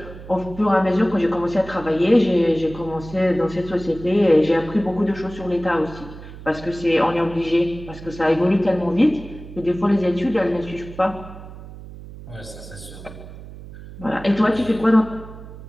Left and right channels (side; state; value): right; noise; hum, 15 dB below the sound